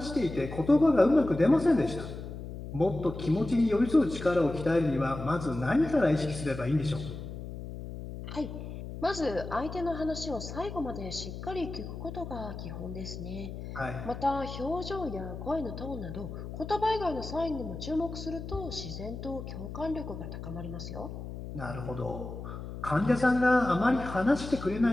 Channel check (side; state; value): left; noise; hum, 9 dB below the sound